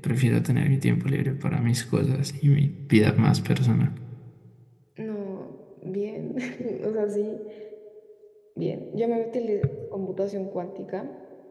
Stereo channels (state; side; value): identical; both; correlation 1.00